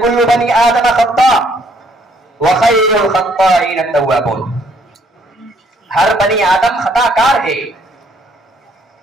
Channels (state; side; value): normal; both; correlation 0.66